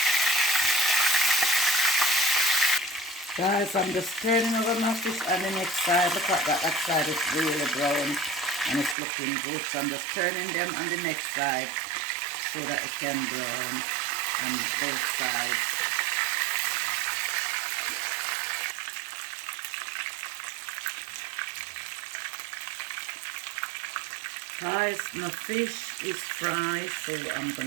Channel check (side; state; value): left; drops out; at 9.0 s